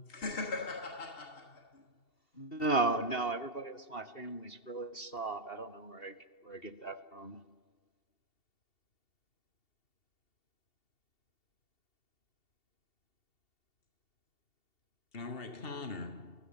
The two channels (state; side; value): late; right; 2.7 ms